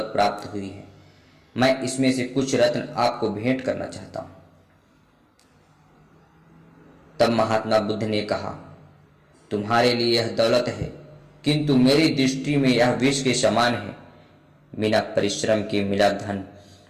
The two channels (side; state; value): both; identical; correlation 1.00